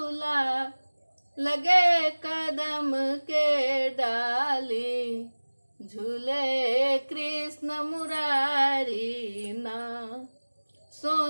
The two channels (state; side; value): inverted; both; correlation -1.00